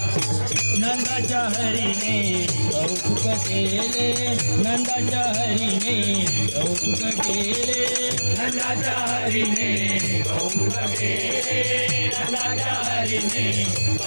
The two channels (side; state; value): both; inverted; correlation -1.00